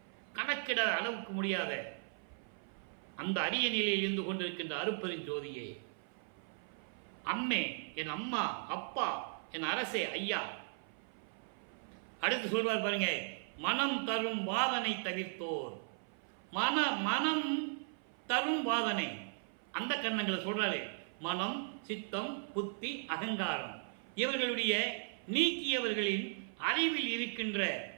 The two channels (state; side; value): silent; left; 53 dB below the other